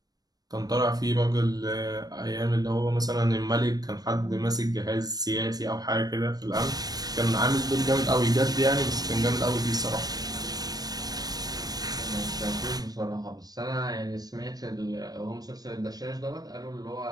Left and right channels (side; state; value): left; late; 0.19 ms